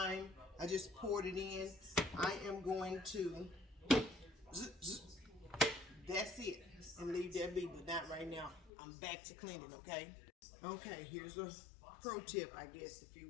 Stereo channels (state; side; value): drops out; right; at 8.7 s